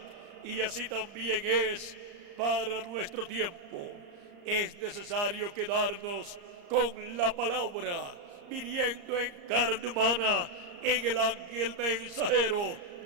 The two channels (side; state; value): left; late; 34 ms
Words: Y así también es para nuestro tiempo. Es necesario quedarnos con la palabra, viniendo en carne humana en el ángel mensajero